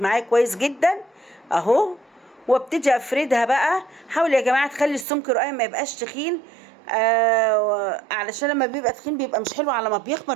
معايا كويس جدا اهو، وابتدي افردها بقى. حاولي يا جماعه تخلي السمك رقيق ما يبقاش تخين، علشان لما بيبقى تخين بيبقى مش حلو، على ما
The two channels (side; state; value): left; drops out; at 5.1 s